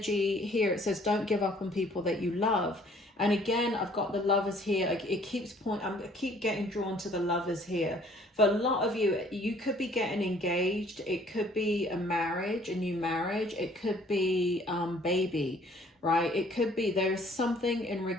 here. It says, don't give up on people that you love. And again, I've got the lovers here. It keeps I keep getting drawn to the lovers here. For a lot of you, you could be getting engaged. It could be a marriage, a new marriage. It could be baby, right? It could be there's something in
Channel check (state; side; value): normal; both; correlation 0.58